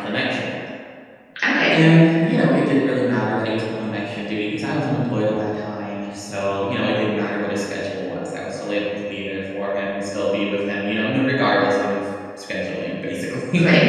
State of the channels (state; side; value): identical; both; correlation 1.00